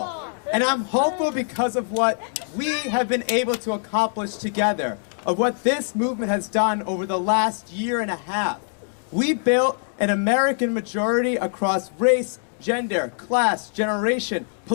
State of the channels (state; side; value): silent; right; 63 dB below the other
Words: And I'm hopeful because of what we have been able to accomplish together, of what this movement has done over the last year and a half. We built an American majority across race, gender, class, generation,